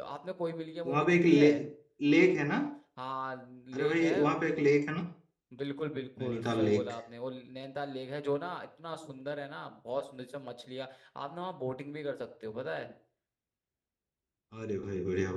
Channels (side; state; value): both; identical; correlation 1.00